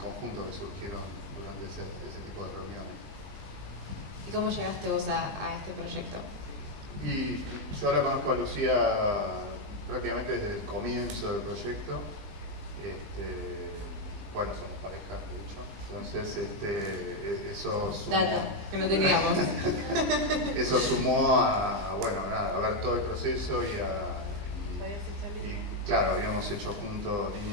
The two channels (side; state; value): left; late; 20 ms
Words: que surgieron durante ese tipo de reuniones. ¿Y cómo llegaste vos a este proyecto? Y yo la conozco a Lucía prácticamente desde el comienzo del proyecto. Bueno, somos pareja, de hecho. Entonces, eso sumó... Data, que no teníamos. Eso sumó a ver todo el proceso y claro, habíamos hecho juntos